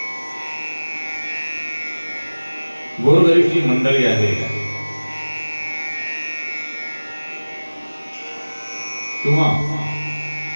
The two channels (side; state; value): both; inverted; correlation -1.00